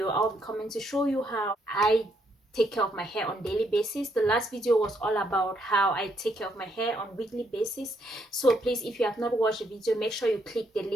I'll be coming to show you how I take care of my hair on daily basis. The last video was all about how I take care of my hair on weekly basis. So please, if you have not watched the video, make sure you click the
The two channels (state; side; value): normal; both; correlation 0.74